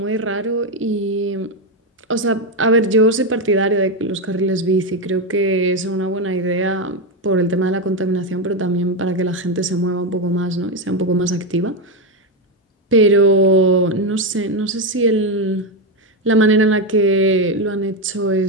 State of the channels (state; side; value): normal; both; correlation 0.08